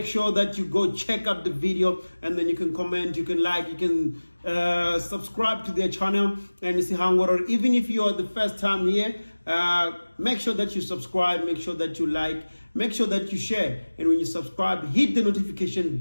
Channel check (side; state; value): both; inverted; correlation -1.00